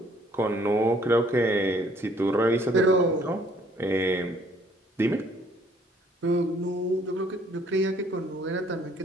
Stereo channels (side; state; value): both; normal; correlation 0.62